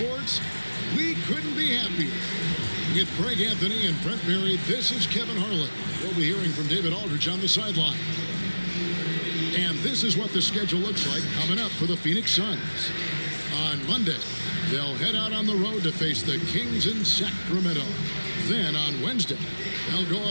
we couldn't be happier. With Greg Anthony and Brent Berry, this is Kevin Harlan. We'll be hearing from David Aldridge on the sideline. And this is what the schedule looks like coming up for the Phoenix Suns. On Monday, they'll head out on the road to face the Kings in Sacramento. Then on Wednesday, they'll go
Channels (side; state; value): both; inverted; correlation -1.00